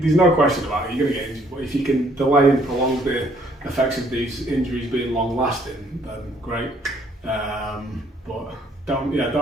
no question about it, you're going to get injured. But if you can delay and prolong the effects of these injuries being long lasting, then great. But don't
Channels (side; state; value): both; normal; correlation 0.64